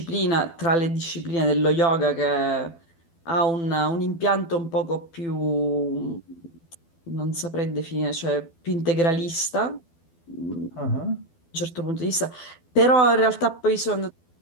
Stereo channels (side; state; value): right; late; 12 ms